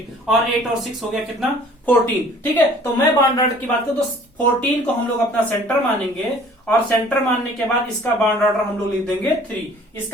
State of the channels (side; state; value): both; normal; correlation 0.52